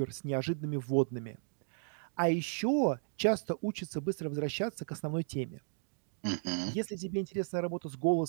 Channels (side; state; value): left; silent; digital silence